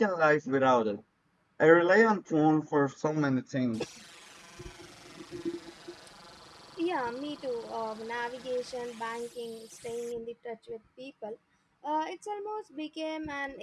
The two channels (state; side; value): identical; both; correlation 1.00